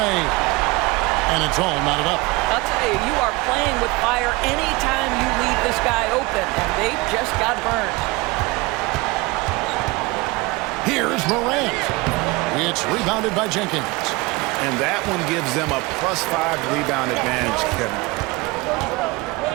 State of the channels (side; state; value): left; quieter; 23.5 dB